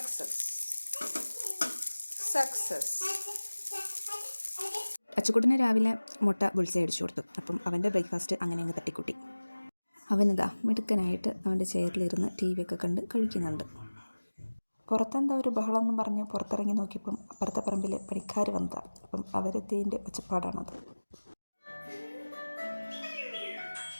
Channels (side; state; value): both; inverted; correlation -1.00